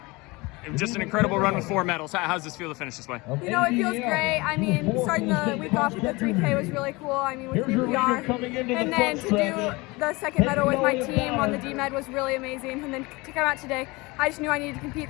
just an incredible run with 4 medals. How's this feel to finish this way? You know, it feels great. I mean, starting the week off with the 3K was really cool. I mean, with new PR. And then to do the second medal with my team on the D-Med was really amazing. And then to come out today, I just knew I needed to compete.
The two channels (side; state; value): right; quieter; 23.9 dB